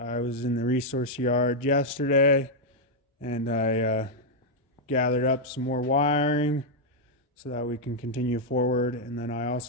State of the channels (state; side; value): normal; both; correlation -0.02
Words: in the resource yard yesterday and I gathered up some more wiring so that we can continue forward. And then I